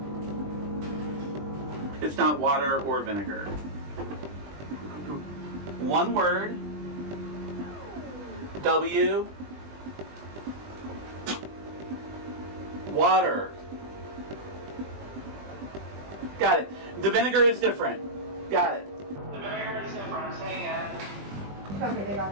It's not water or vinegar. One word. W. Water. Got it. The vinegar is different. Got it. Okay, they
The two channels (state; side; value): late; left; 20 ms